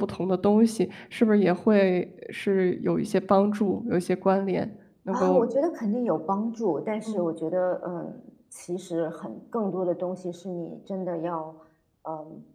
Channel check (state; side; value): identical; both; correlation 1.00